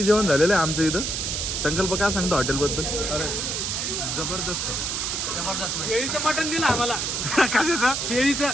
जेवण झालेलं आहे आमचं इथं. संकल्प काय सांगतो हॉटेल बद्दल? अरे जबरदस्त जबरदस्त. शेळीचं मटण दिलं आम्हाला. कशाचं? शेळीचं.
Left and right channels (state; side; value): noise; right; hiss, 1 dB below the sound